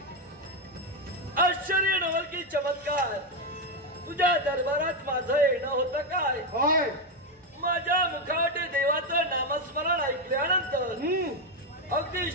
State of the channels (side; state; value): both; normal; correlation 0.07